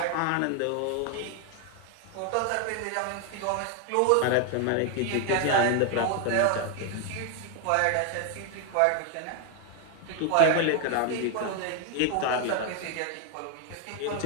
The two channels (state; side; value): different; both; correlation 0.01